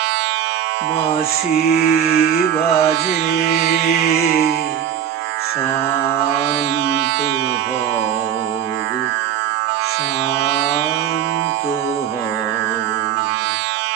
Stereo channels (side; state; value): left; quieter; 9.7 dB